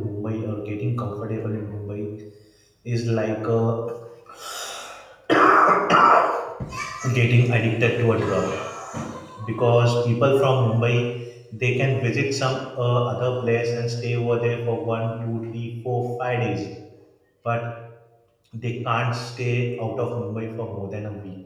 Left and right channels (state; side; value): identical; both; correlation 1.00